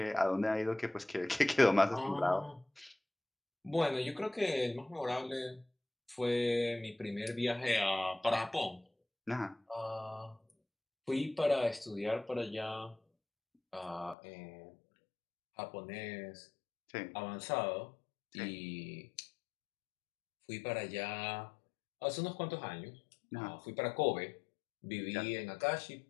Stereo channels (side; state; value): right; drops out; at 14.2 s